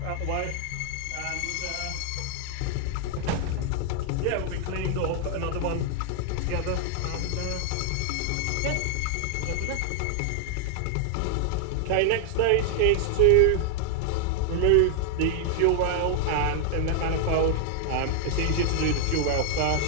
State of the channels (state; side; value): different; both; correlation 0.00